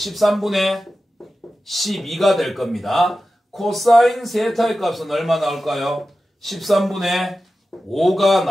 12가 될 겁니다. 코사인 세타의 값은 얼마 나올까요? 13분의 5가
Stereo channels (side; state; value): both; normal; correlation 0.93